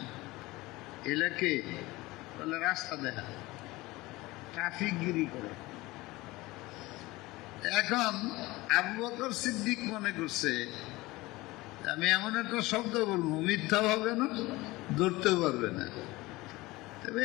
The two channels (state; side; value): quieter; right; 20.4 dB